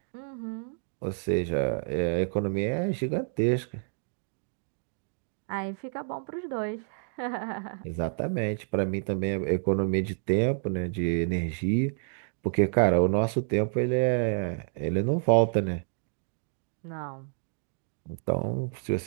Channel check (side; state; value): left; silent; digital silence